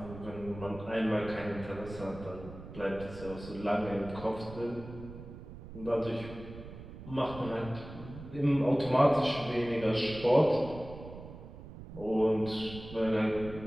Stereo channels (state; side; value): noise; right; rumble, 13 dB below the sound